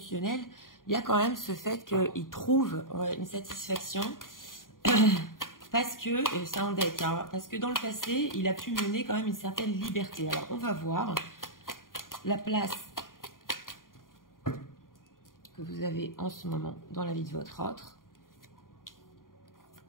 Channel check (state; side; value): late; right; 0.90 ms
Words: il y a quand même ce fait qu'il trouve une satisfaction parce que, c'est un deck, hein, parce que dans le passé, il a pu mener quand même une certaine liberté. Alors, on va voir la place que vous avez en ce moment dans la vie de votre autre.